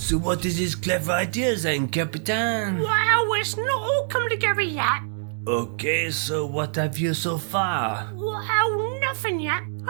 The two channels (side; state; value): left; silent; digital silence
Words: what is his clever idea then, Captain? Well, it's not all come together yet. Okay, so what have you so far? Well, nothing yet.